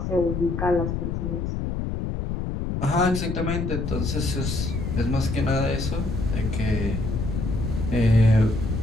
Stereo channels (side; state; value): left; noise; rumble, 2 dB below the sound